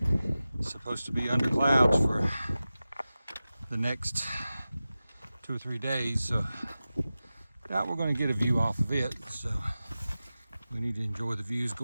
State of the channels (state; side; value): inverted; both; correlation -0.95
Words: is supposed to be under clouds for the next 2 or 3 days, so doubt we're going to get a view off of it, so we need to enjoy the views